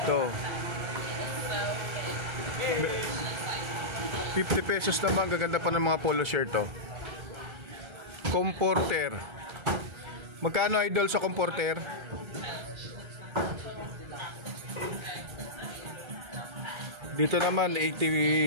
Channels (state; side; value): late; left; 1.3 ms